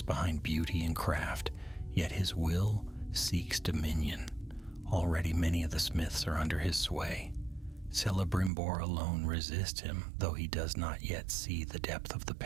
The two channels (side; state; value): left; drops out; at 8.5 s